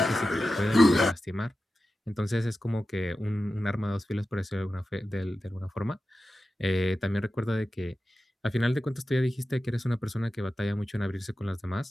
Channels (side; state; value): both; normal; correlation 0.93